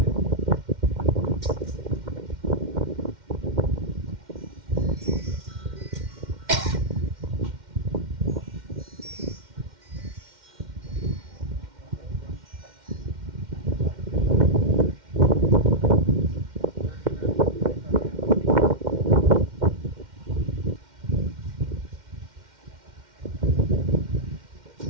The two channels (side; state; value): left; late; 2.1 ms